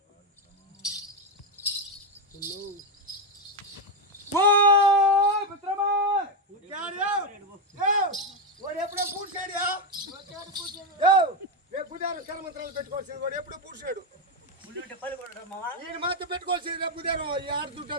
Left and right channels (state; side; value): normal; both; correlation 0.07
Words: ఓ మిత్రమా వాడు ఎప్పుడో పూడ్చాడు. బుధారం కర్మంత్రాలు పెట్టుకోవాల్సింది వాడు ఎప్పుడో పూడ్చాడు. ఈయన మాత్రం పెట్టుకోవాల్సింది రేపు బుధారం ఈ ఆరు